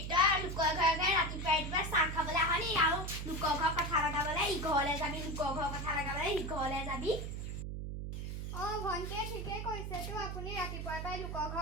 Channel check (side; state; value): right; noise; hum, 5 dB below the sound